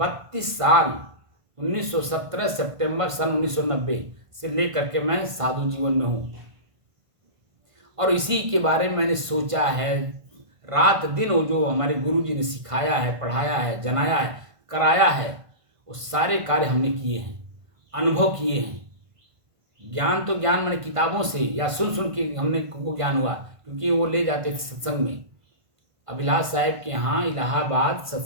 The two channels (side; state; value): left; late; 1.5 ms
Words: साल 1917 सितंबर सन 1990 से लेकर के मैं साधु जीवन में हूँ, और इसी के बारे में मैंने सोचा है रात दिन। वो जो हमारे गुरु जी ने सिखाया है, पढ़ाया है, जनाया है, कराया है, वो सारे कार्य हमने किए हैं, अनुभव किए हैं। ज्ञान तो ज्ञान मैंने किताबों से या सुन सुन के हमने को ज्ञान हुआ, क्योंकि वो ले जाते थे सत्संग में। अभिलाष साहब के यहाँ इलाहाबाद